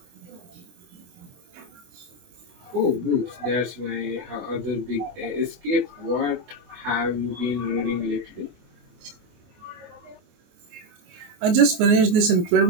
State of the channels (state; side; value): late; left; 25 ms